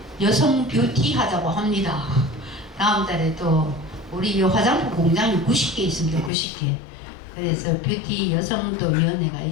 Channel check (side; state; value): right; drops out; at 6.3 s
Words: 여성 뷰티 하자고 합니다. 다음 달에 또 우리 이 화장품 공장이 90개 있습니다. 90개. 그래서 뷰티 여성도 위원회가